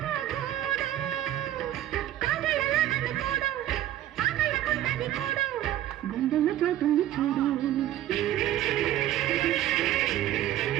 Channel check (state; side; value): quieter; left; 13.0 dB